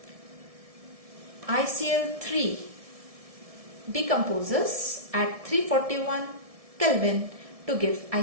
ICl3 decomposes at 341 Kelvin to give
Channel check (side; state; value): left; late; 1.7 ms